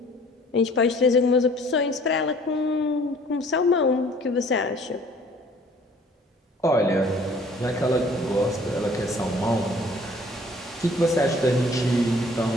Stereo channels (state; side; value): normal; both; correlation 0.54